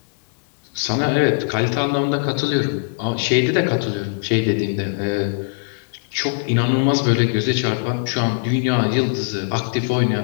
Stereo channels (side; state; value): right; silent; digital silence